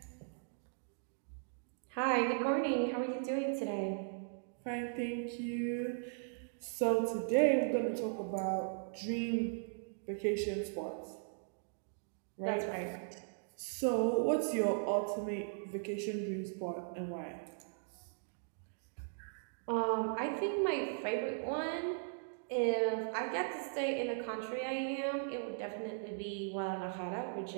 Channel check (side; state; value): left; silent; digital silence